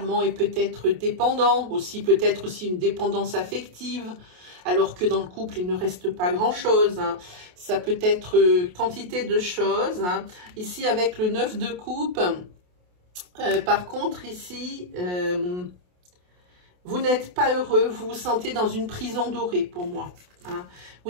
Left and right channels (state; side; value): late; left; 28 ms